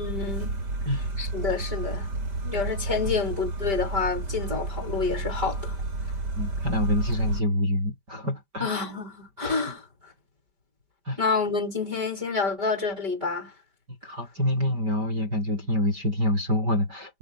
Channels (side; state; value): left; late; 5.1 ms